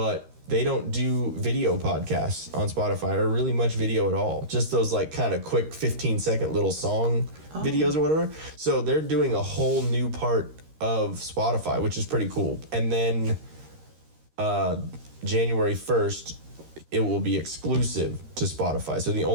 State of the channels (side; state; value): left; late; 13 ms